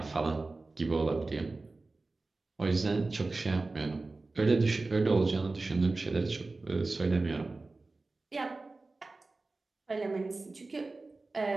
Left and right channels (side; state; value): left; quieter; 3.4 dB